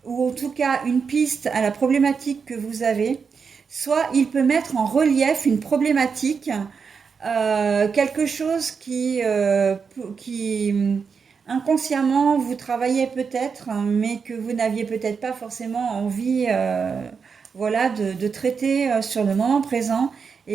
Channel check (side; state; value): left; quieter; 5.8 dB